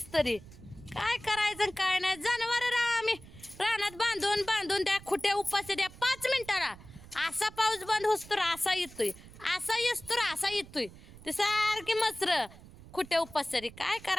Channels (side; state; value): right; noise; rumble, 19 dB below the sound